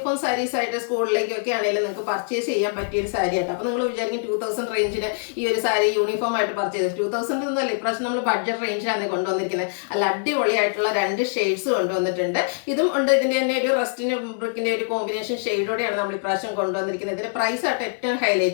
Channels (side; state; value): right; silent; 63 dB below the other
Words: സാരീസ് ആയിട്ട് സ്കൂളിലേക്കൊക്കെ ആണെങ്കിലും നിങ്ങൾക്ക് പർച്ചേസ് ചെയ്യാൻ പറ്റിയൊരു സാരി ആയിട്ട്. അപ്പോൾ നിങ്ങൾ വിചാരിക്കും 2000 റേഞ്ചിൽ ഈ ഒരു സാരി യൂണിഫോം ആയിട്ട് പർച്ചേസ് 2000 ഒന്നുമല്ല, ഇപ്രാവശ്യം നമ്മൾ ബഡ്ജറ്റ് റേഞ്ചിലാണ് കൊണ്ടുവന്നിരിക്കുന്നത്. അല്ല, അടിപൊളിയായിട്ടുള്ള രണ്ട് ഷെയ്ഡ്സ് കൊണ്ടുവന്നിട്ടുണ്ട്. ഇതും ഉണ്ട്, ഇതിൻ്റെ തന്നെ ഒരു റസ്റ്റിന് ബ്രിക്കിൻ്റെ ഒരു കോമ്പിനേഷൻ ഷെയ്ഡോടെയാണ് നമ്മൾ ഇപ്രാവശ്യം കൊണ്ടുവന്നിരിക്കുന്നത്. ഇതിന്റെ പ്രൈസ് ആയിട്ട് ഏറ്റവും